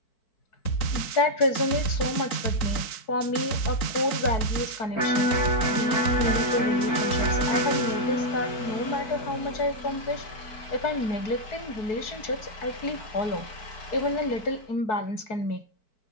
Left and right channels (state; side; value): late; right; 4.5 ms